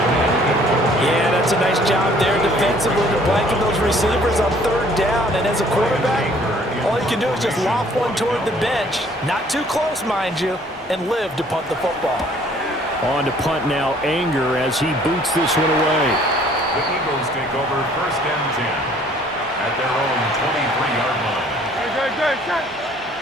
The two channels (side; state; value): both; normal; correlation 0.58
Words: Yeah, that's a nice job there defensively to blanket those receivers on third down. And as a quarterback, all you can do is just loft one toward the bench. Not too close, mind you, and live to punt the football. On to punt now, Anger, as he boots this one away. The Eagles take over 1st and 10 at their own 23-yard line. Good.